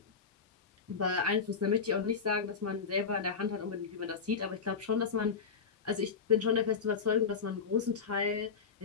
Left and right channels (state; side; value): quieter; right; 5.7 dB